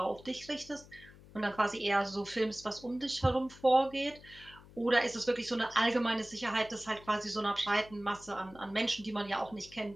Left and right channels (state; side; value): noise; left; hum, 21 dB below the sound